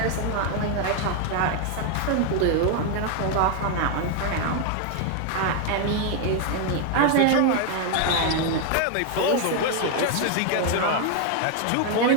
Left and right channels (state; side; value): different; both; correlation 0.00